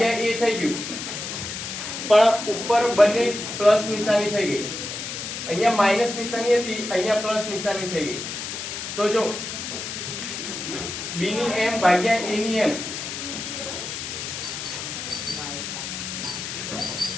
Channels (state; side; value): noise; left; hiss, 6 dB below the sound